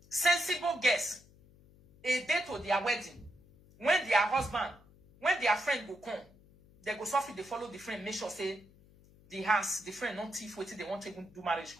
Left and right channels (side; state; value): left; noise; hum, 26 dB below the sound